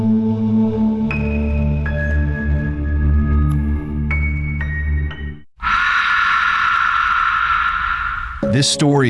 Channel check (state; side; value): identical; both; correlation 1.00